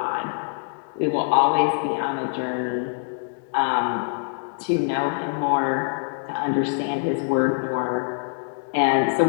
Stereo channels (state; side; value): silent; right; digital silence